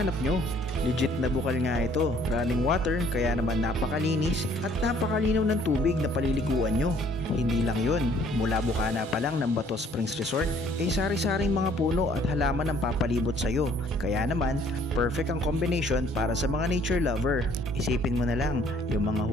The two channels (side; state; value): both; normal; correlation 0.60